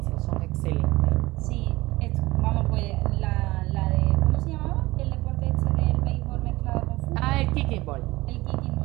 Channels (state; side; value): quieter; left; 19.9 dB